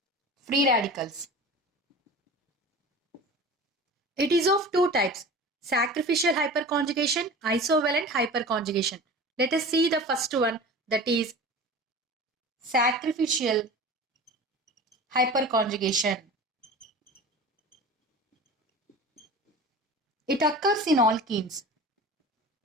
free radicals. It is of two types, sacrificial hyperconjugation, isovalent hyperconjugation. Let us see the first one, that is sacrificial hyperconjugation. It occurs in alkenes.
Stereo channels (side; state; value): both; normal; correlation 0.36